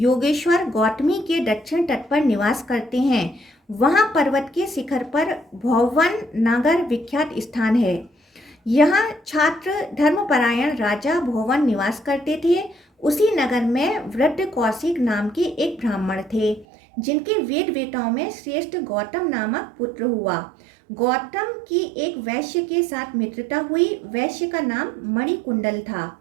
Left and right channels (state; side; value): drops out; left; at 16.7 s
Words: गौतमी के दक्षिण तट पर निवास करते हैं, वहाँ पर्वत के शिखर पर भौवन नगर विख्यात स्थान है। यहाँ छात्र धर्मपरायण राजा भौवन निवास करते थे। उसी नगर में वृद्ध कौशिक नाम के एक ब्राह्मण थे, जिनके वेद वेताओं में श्रेष्ठ गौतम नामक पुत्र हुआ। गौतम की एक वैश्य के साथ मित्रता हुई। वैश्य का नाम मणिकुंडल था।